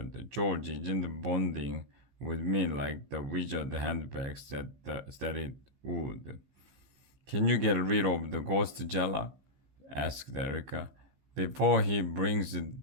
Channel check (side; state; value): left; late; 15 ms